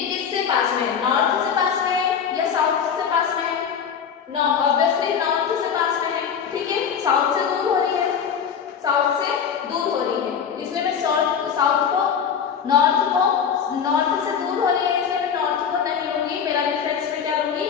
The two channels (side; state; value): right; quieter; 7.3 dB